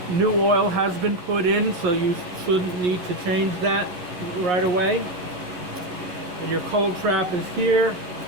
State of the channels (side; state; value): left; late; 11 ms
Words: new oil has been put in, so you shouldn't need to change that right away. And your cold trap is here.